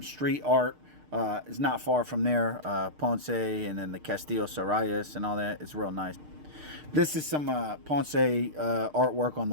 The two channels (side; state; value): left; late; 6.6 ms